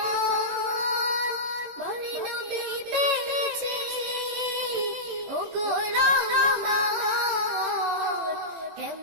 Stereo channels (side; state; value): left; late; 18 ms